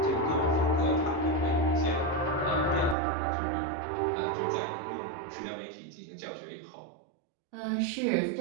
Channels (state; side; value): drops out; left; at 3.0 s